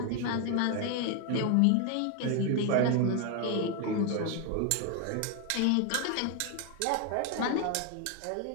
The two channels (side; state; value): both; different; correlation 0.01